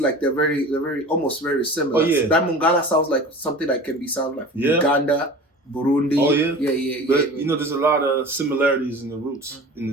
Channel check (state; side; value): normal; both; correlation 0.38